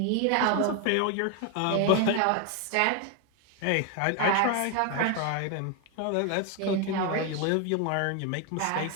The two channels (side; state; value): both; different; correlation 0.01